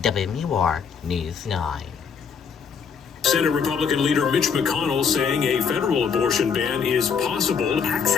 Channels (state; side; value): quieter; right; 6.4 dB